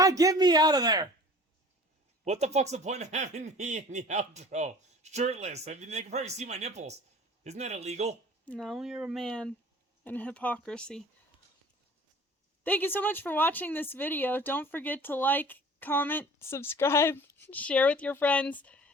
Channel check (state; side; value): normal; both; correlation 0.45